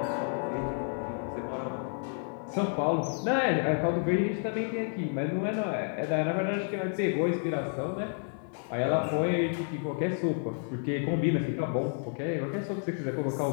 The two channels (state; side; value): silent; right; 58 dB below the other